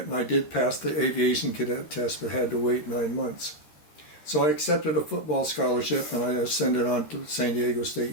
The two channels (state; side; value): late; right; 13 ms